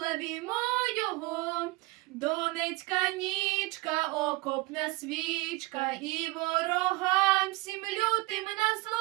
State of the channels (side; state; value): left; quieter; 22.3 dB